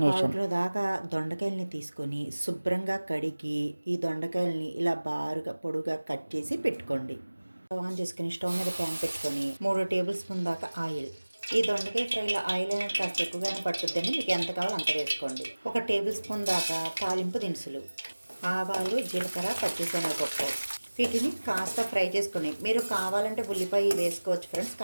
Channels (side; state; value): both; inverted; correlation -1.00